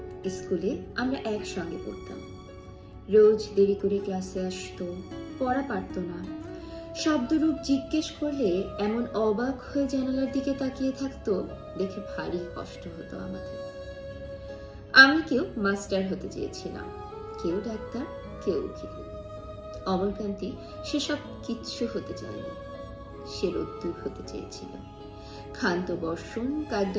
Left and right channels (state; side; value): identical; both; correlation 1.00